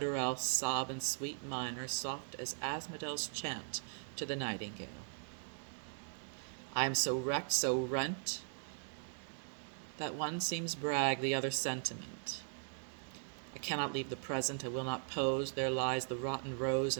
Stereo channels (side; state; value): left; silent; digital silence